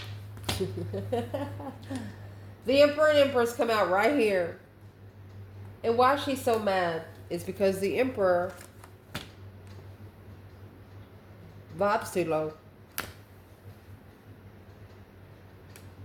The Emperor and Empress come out right here. And why she's so mad is because the Emperor vibes too low.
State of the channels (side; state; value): both; identical; correlation 1.00